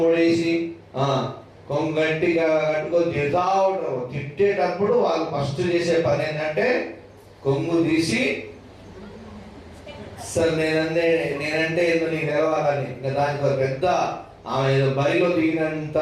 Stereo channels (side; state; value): both; identical; correlation 1.00